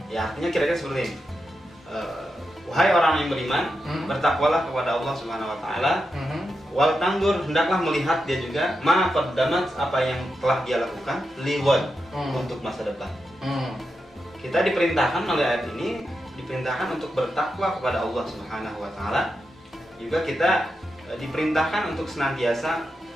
Ya, artinya kira-kira seperti ini. Wahai orang yang beriman, bertakwalah kepada Allah Subhanahu wa taala. Wal tanzur, hendaklah melihat dia juga ma qaddamat, apa yang telah dia lakukan lighad, untuk masa depan. Kita diperintahkan oleh ayat ini, diperintahkan untuk bertakwa kepada Allah Subhanahu wa taala. Juga kita diperintahkan untuk senantiasa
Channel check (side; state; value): both; normal; correlation 0.87